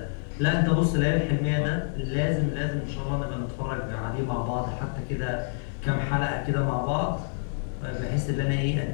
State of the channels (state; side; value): silent; right; digital silence